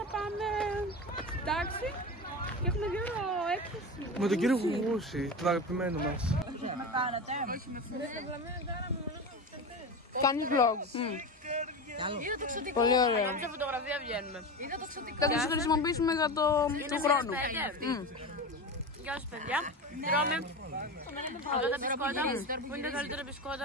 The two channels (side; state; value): both; normal; correlation 0.25